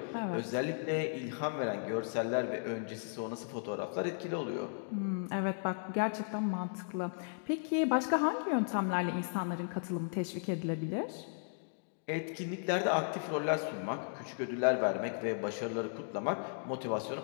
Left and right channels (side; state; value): right; silent; digital silence